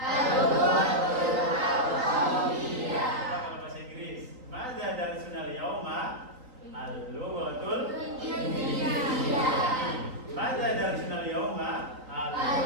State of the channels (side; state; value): left; late; 3.9 ms